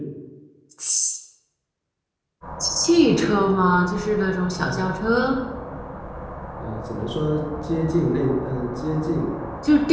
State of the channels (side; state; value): both; identical; correlation 1.00